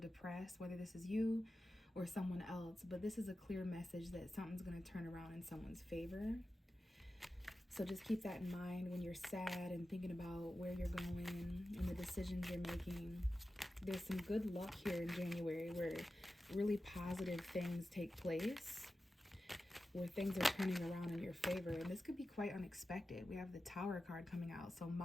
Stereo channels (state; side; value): normal; both; correlation 0.93